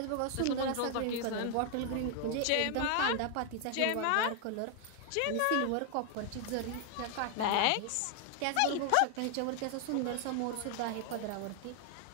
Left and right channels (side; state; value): both; different; correlation 0.00